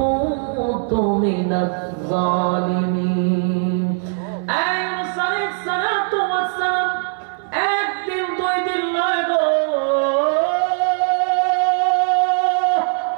মিনাজ জালিমিন। ইউনূস আলাইহিস সালাতু ওয়াস সালাম একদিন 2 দিন নয় গো,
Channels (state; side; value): silent; left; 66 dB below the other